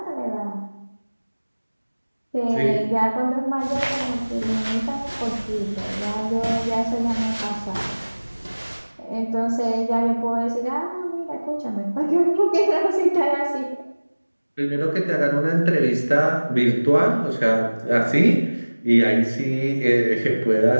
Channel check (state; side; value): inverted; both; correlation -1.00